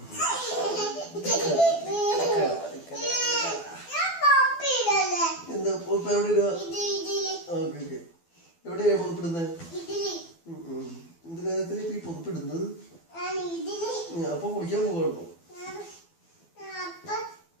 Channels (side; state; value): right; late; 12 ms